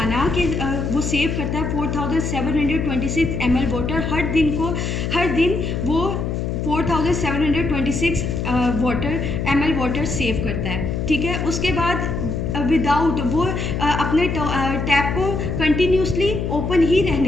कि वो सेव करता है 4726 ml वाटर हर दिन वो 4726 ml वाटर सेव करता है। ठीक है, उसके बाद विदाउट वो अपने टैप को कंटिन्यूसली ओपन ही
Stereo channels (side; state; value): left; noise; hum, 2 dB below the sound